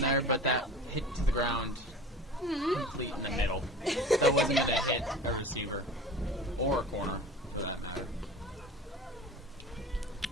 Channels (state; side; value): normal; both; correlation 0.38